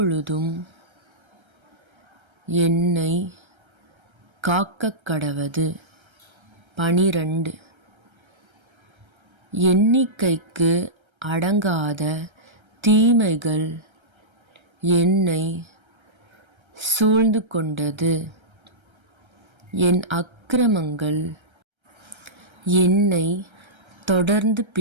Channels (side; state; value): left; late; 1.3 ms